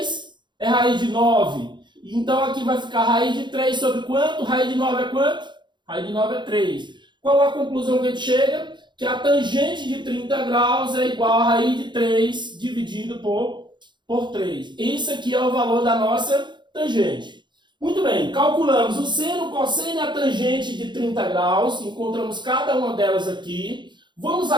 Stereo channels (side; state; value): left; late; 0.22 ms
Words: é raiz de 9. Então aqui vai ficar raiz de 3 sobre quanto? Raiz de 9 é quanto? Raiz de 9 é 3. Qual a conclusão que a gente chega? Que a tangente de 30 graus é igual a raiz de 3 dividido por 3. Esse aqui é o valor da nossa tangente. Muito bem, calculamos o seno, o cosseno e a tangente de 30 graus. Encontramos cada uma delas aqui. Vamos